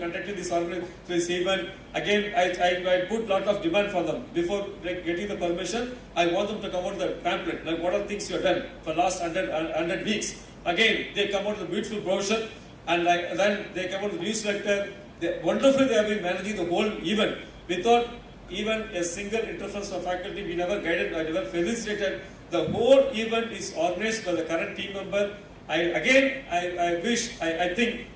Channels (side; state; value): both; identical; correlation 1.00